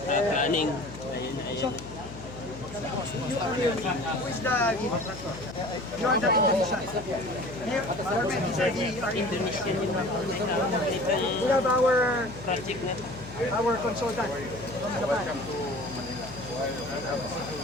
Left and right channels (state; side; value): noise; left; hum, 13 dB below the sound